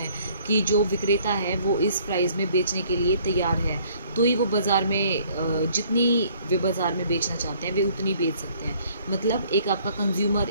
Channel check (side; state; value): both; inverted; correlation -0.59